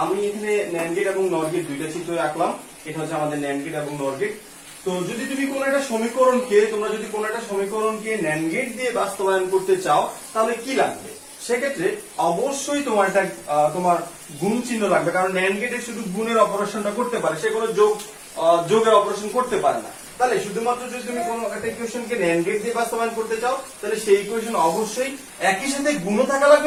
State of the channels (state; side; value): identical; both; correlation 1.00